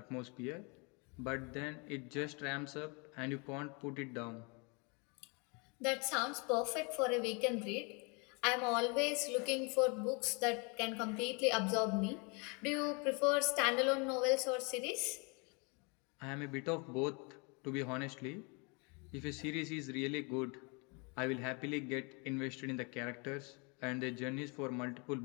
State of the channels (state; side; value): quieter; right; 31.8 dB